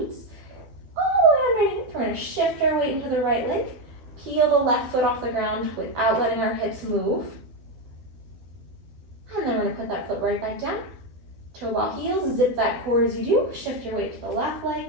All the way underneath, we're gonna shift our weight into the right leg. Peel the left foot off the ground without letting our hips move. we're gonna put that foot right back down. Toe ball heels, zip that core as you do. Shift your weight to the left leg.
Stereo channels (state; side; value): late; left; 12 ms